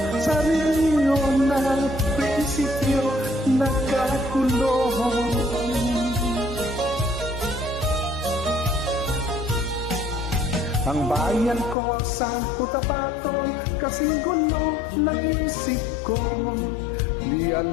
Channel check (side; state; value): right; drops out; at 11.8 s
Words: sa rehiyon ng prinsipyo, nagkakulong. Ang bayan ko sa Cotabato, kasing gulo ng isip ko. Di